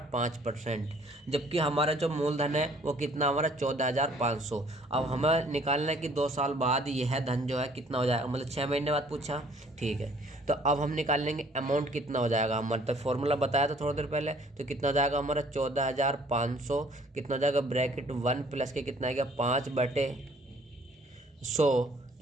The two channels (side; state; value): both; normal; correlation 0.58